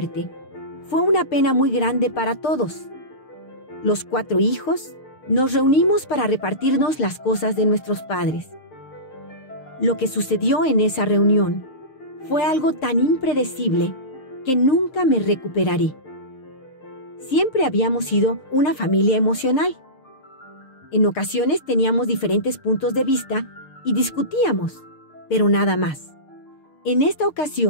fue una pena muy grande para todos. Los 4 hijos nos reunimos para repartirnos las cosas de nuestros padres. Lo que sucedió en esa reunión fue algo tan impredecible que nunca me recuperaré. Siempre habíamos sido una familia emocional. En ocasiones teníamos diferentes puntos de vista y discutíamos, pero nada más. En esta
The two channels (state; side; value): late; right; 7.7 ms